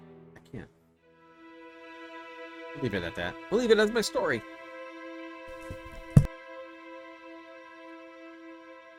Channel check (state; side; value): identical; both; correlation 1.00